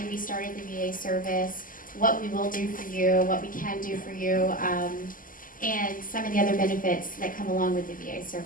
we started the VA service, what we will do for you, what we can do for you, and some of the other benefits that come along with the VA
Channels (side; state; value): right; late; 0.40 ms